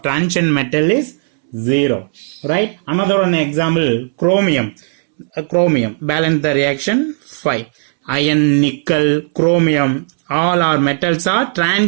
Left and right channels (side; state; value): left; silent; 70 dB below the other